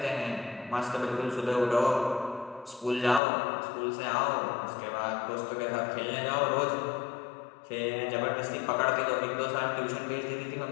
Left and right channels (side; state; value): right; drops out; at 3.2 s